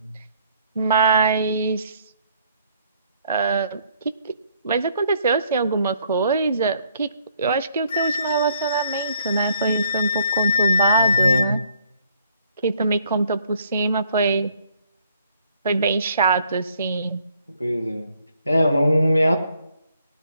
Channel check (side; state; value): both; inverted; correlation -0.66